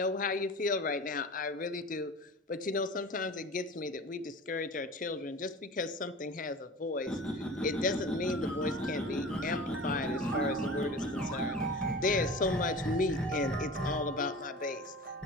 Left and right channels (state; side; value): normal; both; correlation 0.36